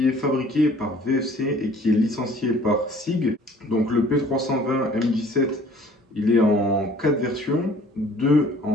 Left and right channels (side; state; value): both; normal; correlation 0.53